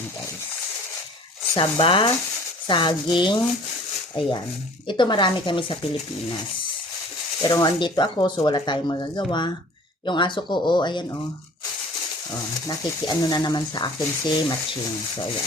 guys. Saba, saging, ayan. Ito marami kami sa Pilipinas. Pero andito ako, so wala tayong magagawa. Yung aso ko, oh, ayan, oh. Oh, nakikiano na naman sa akin si Matching. So,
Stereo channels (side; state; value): both; normal; correlation 0.48